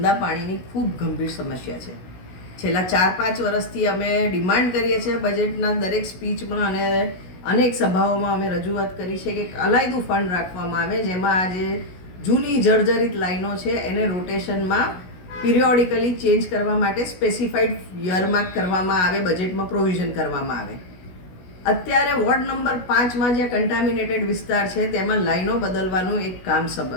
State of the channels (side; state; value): right; late; 16 ms